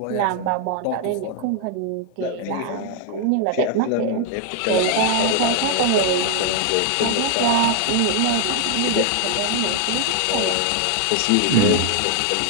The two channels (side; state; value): both; different; correlation 0.00